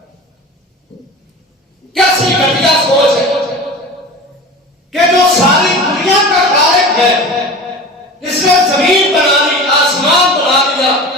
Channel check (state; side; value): normal; both; correlation 0.35